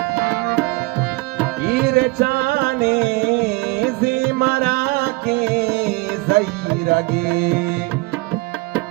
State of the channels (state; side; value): quieter; left; 24.5 dB